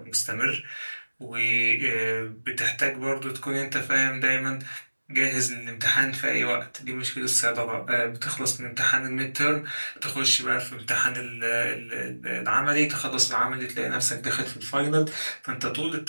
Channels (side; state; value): both; inverted; correlation -1.00